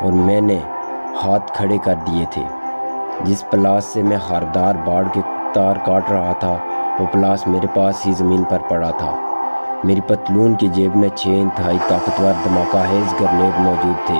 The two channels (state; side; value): inverted; both; correlation -1.00